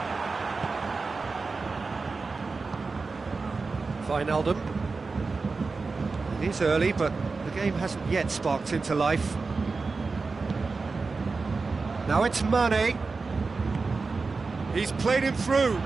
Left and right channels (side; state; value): left; quieter; 4.2 dB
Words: Wijnaldum. It is early, but the game hasn't yet sparked into life. Now it's Mane. He's played him through.